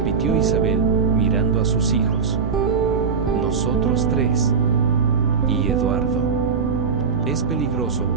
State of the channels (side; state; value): left; quieter; 5.7 dB